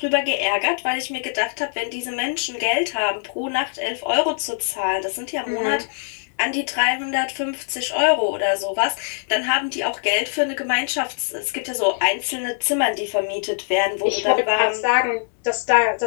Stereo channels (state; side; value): silent; right; 64 dB below the other